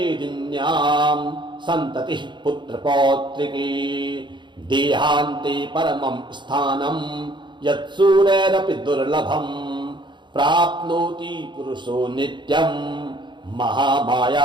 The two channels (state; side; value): late; left; 0.23 ms